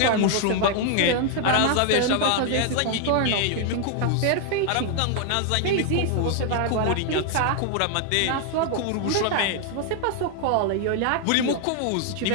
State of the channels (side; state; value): both; different; correlation 0.00